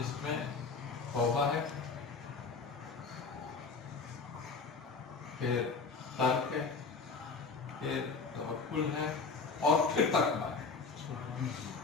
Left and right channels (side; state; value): right; quieter; 4.6 dB